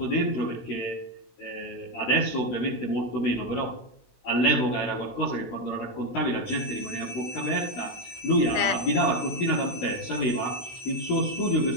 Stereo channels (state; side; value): late; right; 16 ms